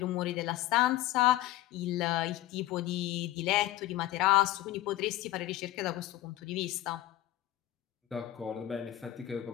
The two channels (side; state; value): right; quieter; 15.3 dB